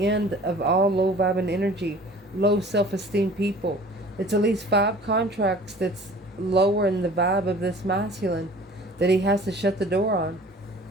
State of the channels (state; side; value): normal; both; correlation 0.47